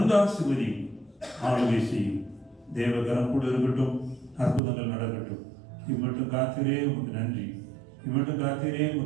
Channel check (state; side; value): drops out; left; at 4.6 s